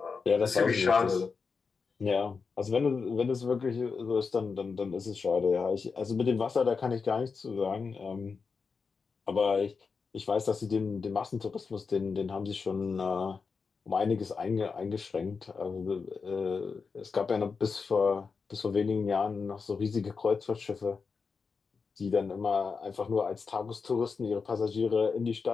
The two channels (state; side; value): quieter; right; 5.1 dB